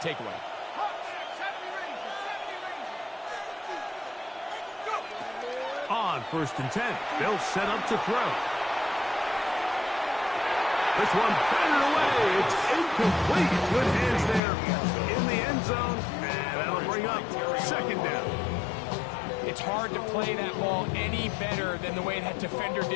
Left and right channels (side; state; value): right; drops out; at 14.4 s